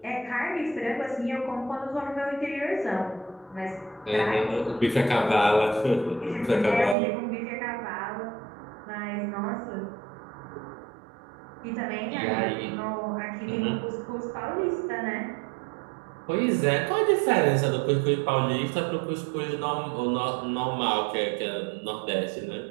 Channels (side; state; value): left; drops out; at 7.0 s